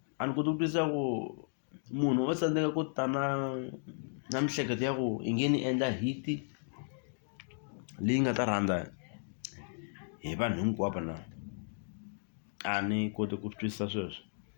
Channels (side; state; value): right; silent; digital silence